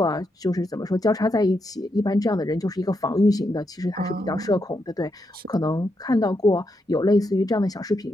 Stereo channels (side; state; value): both; normal; correlation 0.82